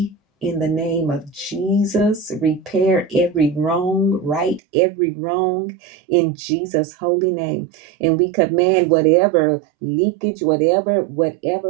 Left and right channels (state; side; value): drops out; left; at 4.6 s